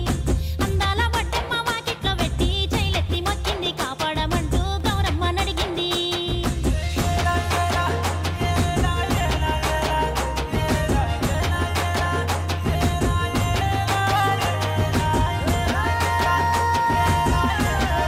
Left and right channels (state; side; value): identical; both; correlation 1.00